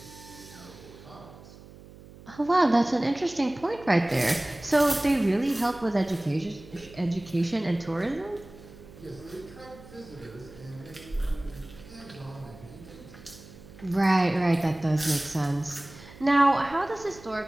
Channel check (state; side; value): noise; right; hum, 19 dB below the sound